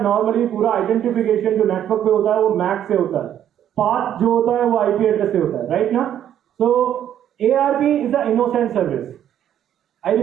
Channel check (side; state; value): left; quieter; 10.4 dB